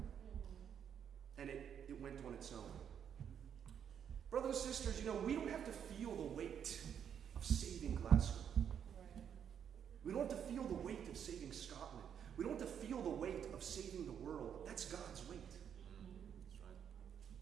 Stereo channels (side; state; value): left; quieter; 8.4 dB